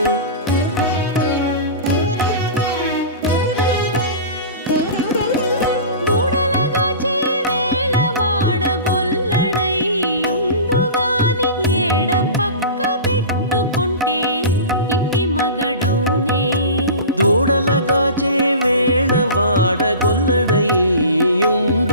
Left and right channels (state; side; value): inverted; both; correlation -0.33